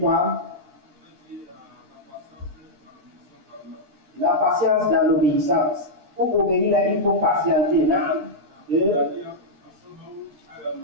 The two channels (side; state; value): left; late; 13 ms